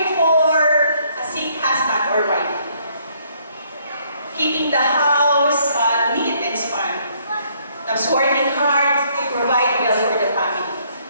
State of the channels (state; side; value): inverted; both; correlation -0.67